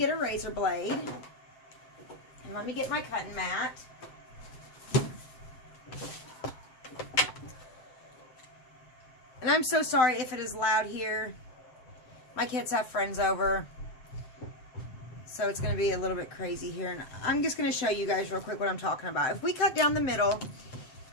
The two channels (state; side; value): late; right; 7.7 ms